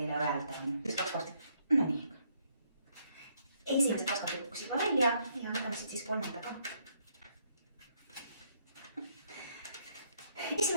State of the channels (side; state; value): both; inverted; correlation -0.71